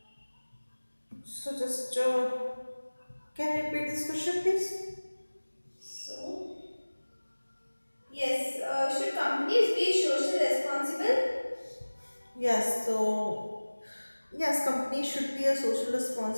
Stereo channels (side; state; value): both; inverted; correlation -1.00